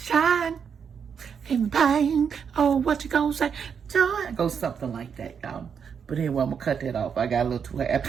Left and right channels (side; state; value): left; quieter; 6.9 dB